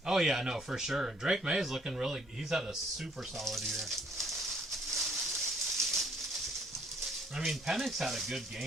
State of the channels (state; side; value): normal; both; correlation 0.63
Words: Oh yeah, no, for sure. Drake May is looking really, he's had a super solid year. I mean, Penix had a good